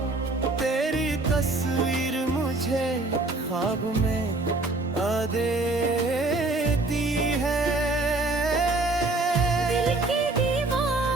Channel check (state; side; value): quieter; left; 3.1 dB